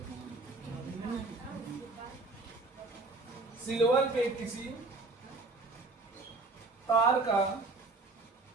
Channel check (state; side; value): quieter; left; 3.4 dB